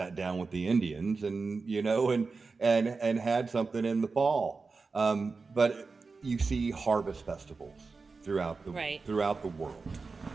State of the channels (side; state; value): left; quieter; 4.3 dB